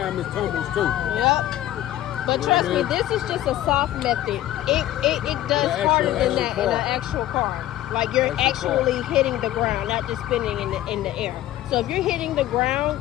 it tumbles too. Yep. But trust me, this is just a soft method. It does The harder than actual that in car. an actual car. Like you're actually hitting the ground, not just spinning in the air. So if you're hitting the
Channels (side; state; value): right; quieter; 13.9 dB